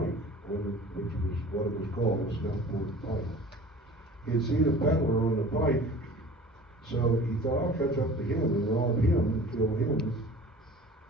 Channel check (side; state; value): both; normal; correlation 0.43